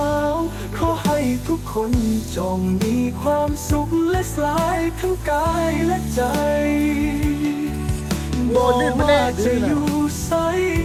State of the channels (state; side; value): identical; both; correlation 1.00